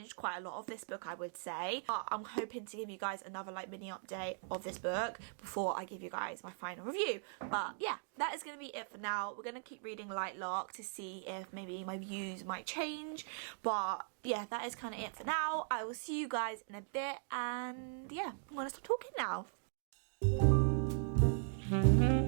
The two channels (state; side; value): silent; left; digital silence